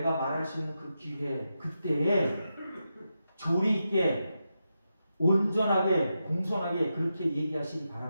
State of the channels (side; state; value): both; inverted; correlation -0.88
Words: 말할 수 있는 그 기회, 그때에 조리 있게, 온전하게, 공손하게 그렇게 얘기하시기